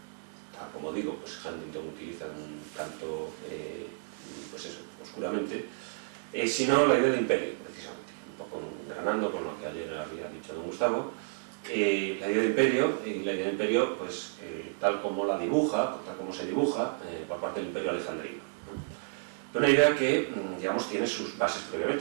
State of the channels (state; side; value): silent; left; digital silence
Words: tal como digo, pues Huntington utiliza un tanto, pues eso, oscuramente, sino la idea de imperio, precisamente, un poco granando con lo que ayer había dicho don Gustavo. La idea de imperio, pues, tal como se dibuja por parte del imperio alejandrino, ¿no? Una idea que, digamos, tiene sus bases